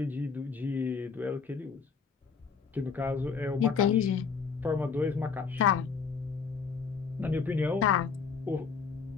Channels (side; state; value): right; quieter; 5.6 dB